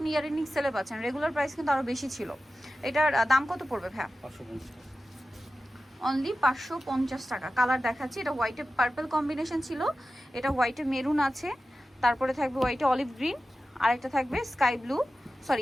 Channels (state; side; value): normal; both; correlation 0.94